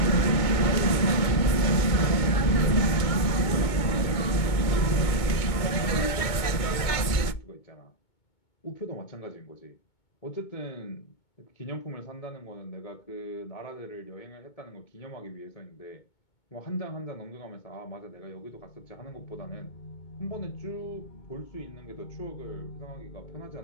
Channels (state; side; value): late; right; 2.2 ms